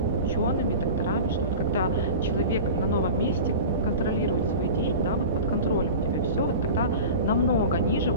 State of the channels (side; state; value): both; inverted; correlation -0.33